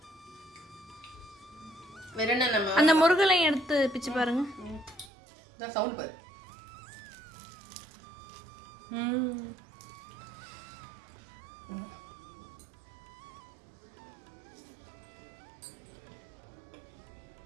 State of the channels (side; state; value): left; drops out; at 5.1 s